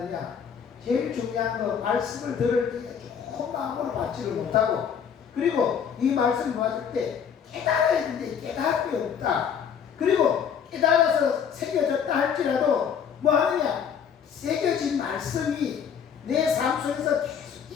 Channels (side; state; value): right; quieter; 7.6 dB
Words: 제일 중요한 거 말씀을 들을 때 좋은 마음으로 받지를 못하고, 그리고 이 말씀을 받을 때 깨달아야 되는데 깨달음이 없다. 그리고 깨달아서 새겨졌다 할지라도 뭐 하느냐? 새겨진 말씀이 내 삶 속에서 계속